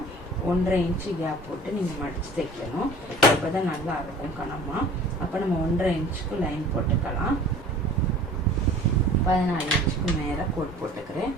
1.5 இன்ச்சு கேப் போட்டு நீங்கள் மடித்து தைக்கணும். அப்போ தான் நல்லா இருக்கும் கனமாக. அப்போ நம்ம 1.5 இன்ச்சுக்கு லைன் போட்டுக்கலாம். 14 இன்ச்சுக்கு மேலே கோட் போட்டுக்கிறேன்.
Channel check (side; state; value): both; normal; correlation 0.45